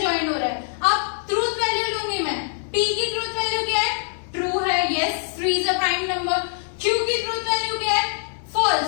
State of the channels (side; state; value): right; silent; 62 dB below the other